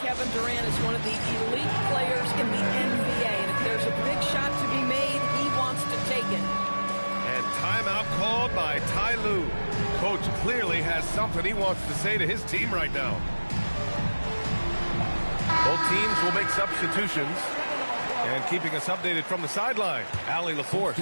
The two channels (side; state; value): both; inverted; correlation -1.00